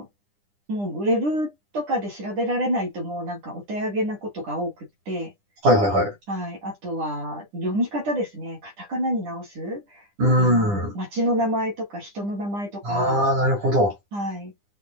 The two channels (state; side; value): late; left; 9.9 ms